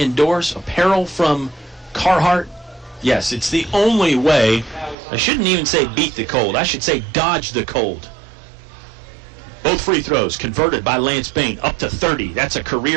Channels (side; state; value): left; drops out; at 5.0 s